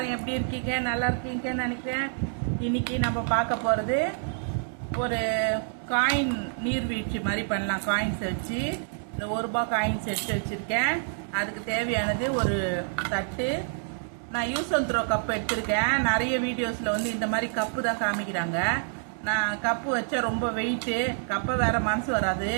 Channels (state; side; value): silent; left; digital silence